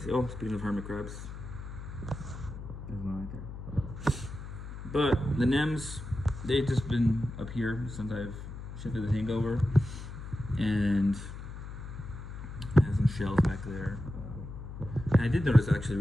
Oh, speaking of hermit crabs, there's one right there. But the NEMs, they've just been up here since I've shifted the tank over, and I have some shells back there. And I did notice actually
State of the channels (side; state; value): left; noise; hum, 10 dB below the sound